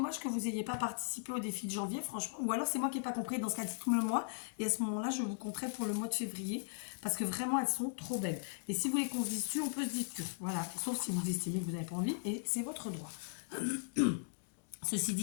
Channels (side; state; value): right; silent; digital silence